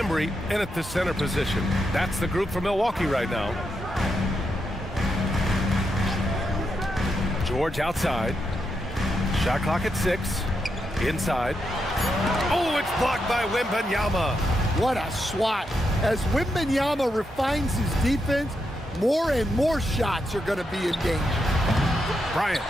in at the center position. That's the group for Milwaukee right now. George outside. Shot clock at 6. Inside. Oh, it's blocked by Wembanyama. What a swat. As Wembanyama refines his defense, more and more shots are going to be in danger. Bryant,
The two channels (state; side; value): normal; both; correlation 0.83